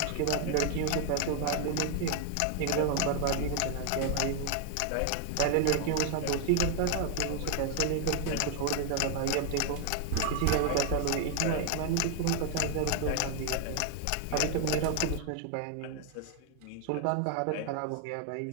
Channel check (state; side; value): different; both; correlation 0.01